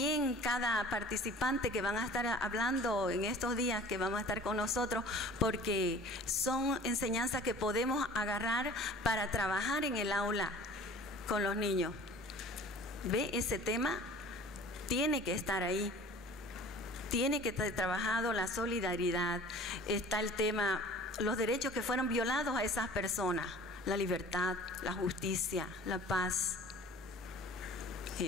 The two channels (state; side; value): normal; both; correlation 0.45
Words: cada participante que van a estar hablando en estos días, que vamos a estar con nosotros, porque son enseñanzas que podemos agarrar para trabajar en el aula con los niños. ¿Ve? Ese tema tiene que estar ahí. Tiene que estar trabajado la solidaridad. Está el tema, los derechos que fueron violados a esas personas. La libertad, la justicia, la paz.